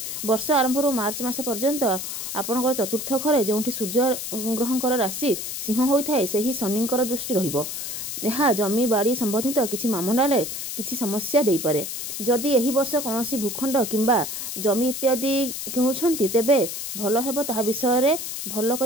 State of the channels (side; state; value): left; noise; hiss, 6 dB below the sound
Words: ବର୍ଷ ଆରମ୍ଭରୁ ମାର୍ଚ୍ଚ ମାସ ପର୍ଯ୍ୟନ୍ତ ଆପଣଙ୍କର ଚତୁର୍ଥ ଘରେ ଯେଉଁଠି ସୂର୍ଯ୍ୟ ଗ୍ରହଙ୍କର ରାଶି ସିଂହ ହୋଇଥାଏ, ସେହି ଶନିଙ୍କର ଦୃଷ୍ଟି ରହିବ। ଏହା ଜମି ବାଡ଼ି ସମ୍ବନ୍ଧିତ କିଛି ମାମଲାରେ କିଛି ସମସ୍ୟା ଦେଇପାରେ। ଯଦି ଏହି ବର୍ଷ କୌଣସି ଭୂଖଣ୍ଡ କିମ୍ବା ଜମି ଇତ୍ୟାଦି କିଣୁଛନ୍ତି ତେବେ ଭଲ ହେବ ତାହା ବିଷୟରେ ଭଲ